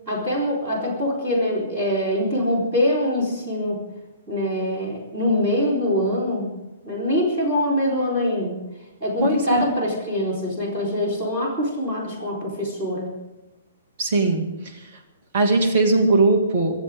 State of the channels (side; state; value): both; inverted; correlation -0.49